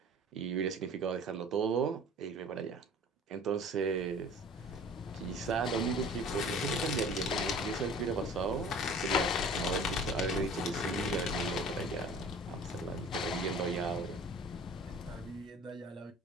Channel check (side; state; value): both; normal; correlation 0.45